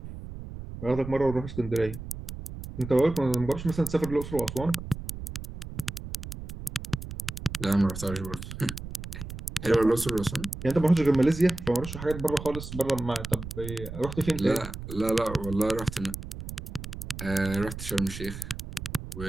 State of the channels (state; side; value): noise; right; rumble, 10 dB below the sound